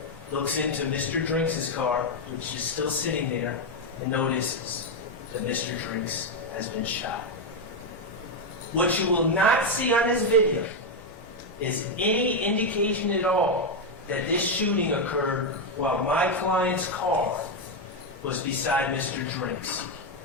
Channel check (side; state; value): left; noise; rumble, 28 dB below the sound